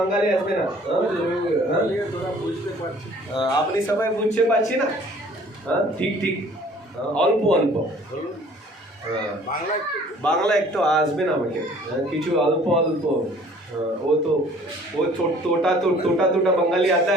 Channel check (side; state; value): both; normal; correlation 0.53